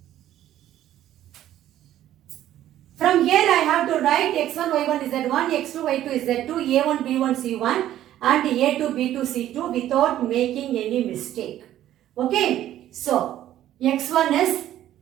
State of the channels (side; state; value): left; quieter; 12.6 dB